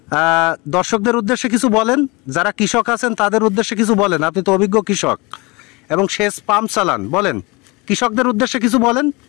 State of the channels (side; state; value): right; quieter; 25.8 dB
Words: দর্শকদের উদ্দেশ্যে কিছু বলেন, যারা কৃষক আছেন তাদের উদ্দেশ্যে কিছু বলেন। আপনি তো অভিজ্ঞ কৃষক এবং সেচ পাম্প চালান, বলেন কৃষকদের উদ্দেশ্যে কিছু বলেন।